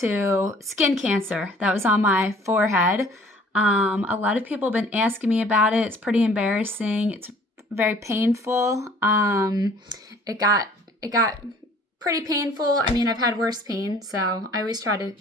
skin cancer that was on my forehead. A lot of people have been asking me about it. It's pretty embarrassing. It's very painful. It got pretty painful. I mean, I've had worse pain, so I always try to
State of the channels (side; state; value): both; normal; correlation 0.53